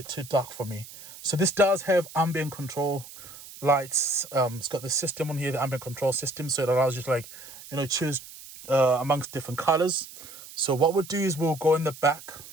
too dark for me. So this does have ambient control lights. It's got the system on here, the ambient control system, so it allows you to, like, you know, choose amongst different colors. So what we'll do is we'll go in the back,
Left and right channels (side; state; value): right; noise; hiss, 16 dB below the sound